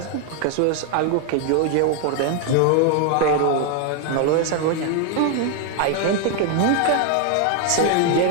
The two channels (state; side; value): different; both; correlation 0.01